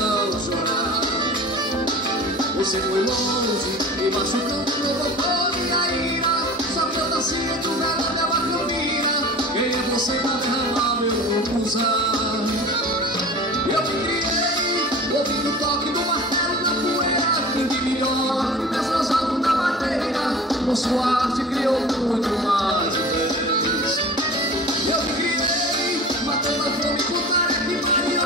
chorar. Você foi longe, me machucando, provocou minha ira. Só que eu nasci entre o verão e a macambira. Quem é você pra derramar meu usar? Eu me criei, ouvindo o toque do martelo na poeira. Quem de melhor, desfrosado na madeira. Com sua arte criou muito mais vezes. Eu me criei, matando a fome com tarefa e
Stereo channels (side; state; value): both; normal; correlation 0.39